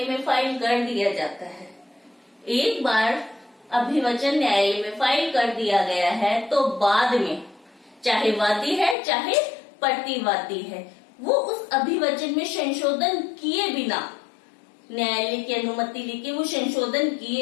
में फाइल कर दिया जाता है, एक बार अभिवचन न्यायालय में फाइल कर दिया गया है तो बाद में चाहे वादी है चाहे प्रतिवादी है, वो उस अभिवचन में संशोधन किए बिना, न्यायालय की अनुमति लेके वो संशोधन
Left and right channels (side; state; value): right; drops out; at 9.0 s